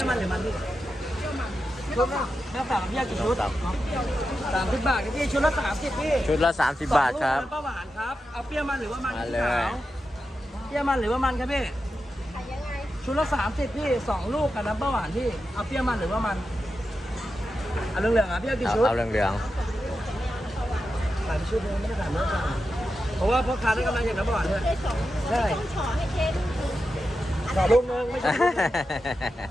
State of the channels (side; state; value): both; normal; correlation 0.90